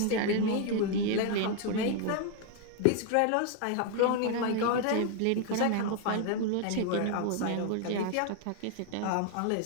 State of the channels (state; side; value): different; both; correlation 0.00